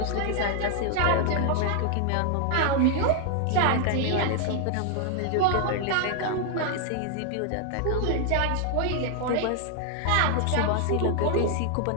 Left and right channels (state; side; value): different; both; correlation 0.00